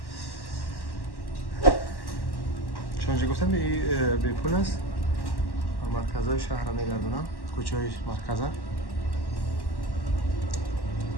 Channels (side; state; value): right; late; 1.1 ms